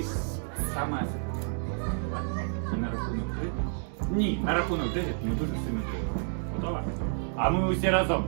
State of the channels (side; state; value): left; silent; 58 dB below the other